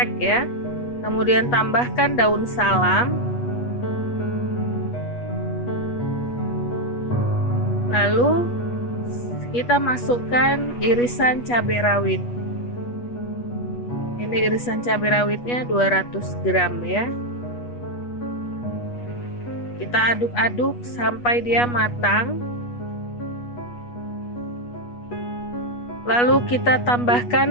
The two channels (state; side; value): late; right; 8.3 ms